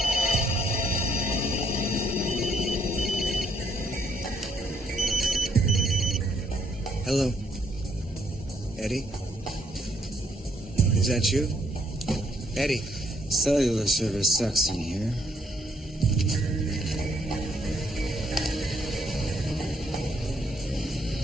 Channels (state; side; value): normal; both; correlation 0.70